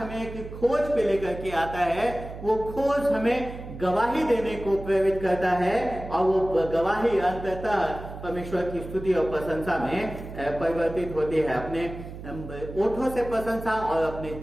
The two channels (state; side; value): noise; right; hum, 12 dB below the sound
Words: एक खोज पे लेकर के आता है, वो खोज हमें गवाही देने को प्रेरित करता है, और वो गवाही अंततः परमेश्वर की स्तुति और प्रशंसा में परिवर्तित होती है। अपने ओठों से प्रशंसा और अपने